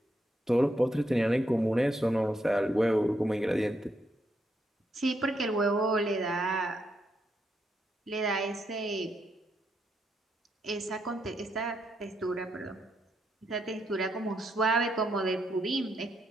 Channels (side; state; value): both; normal; correlation 0.79